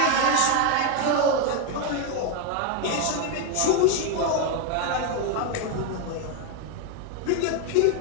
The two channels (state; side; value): different; both; correlation 0.01